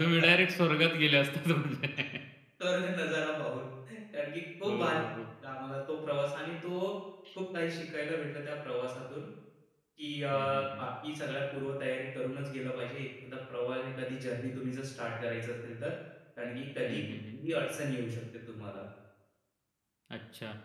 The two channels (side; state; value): both; identical; correlation 1.00